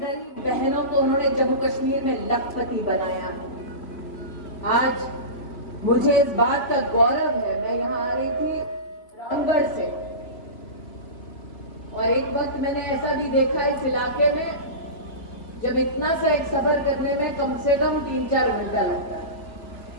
बहनों को उन्होंने जम्मू कश्मीर में लखपति बनाया है। आज मुझे इस बात का गौरव है, मैं यहाँ आ रही थी रामगढ़ से और एक वक्त मैंने ऐसा भी देखा इस इलाके में जब इतना सा एक सफर करने में कम से कम 3-4 घंटा लगता है।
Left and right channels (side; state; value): right; late; 2.8 ms